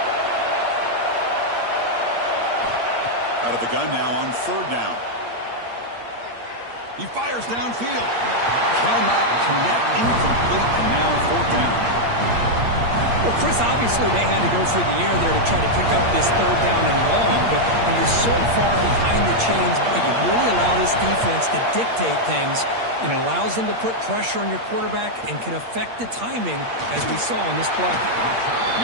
Out of the gun now on 3rd down. He fires downfield. Cannot connect. Incomplete, and now 4th down. Well, Chris, obviously they had to go through the air there to try to pick up this 3rd down and long, but when you're so far behind the chains, you really allow this defense to dictate things, and it allows them to put pressure on your quarterback and can affect the timing, as we saw on this play.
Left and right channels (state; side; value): late; left; 8.6 ms